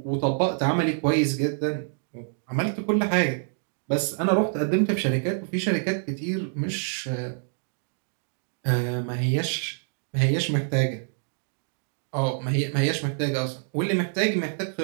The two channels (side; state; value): left; silent; digital silence